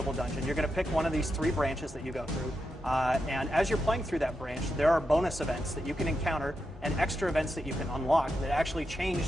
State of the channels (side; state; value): both; normal; correlation 0.87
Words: dungeon, you're going to pick one of these 3 branches that you go through. And as you're playing through that branch, there are bonus events that you can encounter and extra events that you can unlock that actually